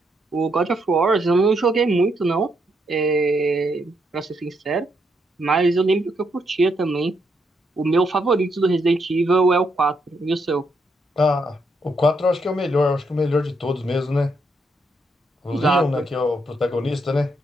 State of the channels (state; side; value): normal; both; correlation 0.77